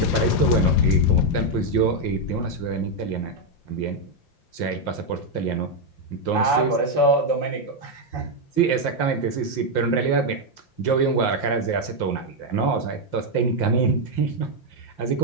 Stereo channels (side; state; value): right; late; 5.8 ms